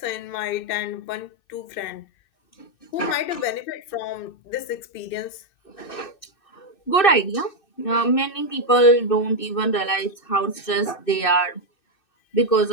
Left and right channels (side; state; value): right; late; 2.6 ms